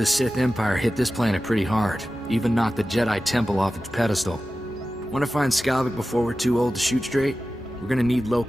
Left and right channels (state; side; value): normal; both; correlation 0.94